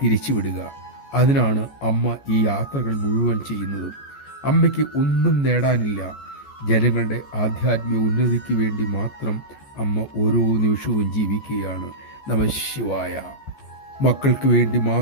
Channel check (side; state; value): right; late; 14 ms